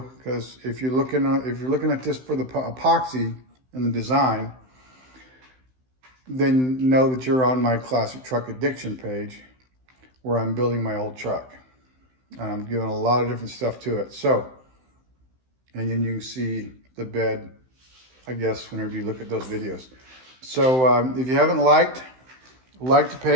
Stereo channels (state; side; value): late; left; 16 ms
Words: because if you're looking at this for the epoxy and the design, then know that you're on my Classic Truck Addiction page, where I'm building my old truck. And I'm doing a lot of different stuff to it. So, and then you can see the bed, I guess, whenever you look at those videos. So if you haven't like the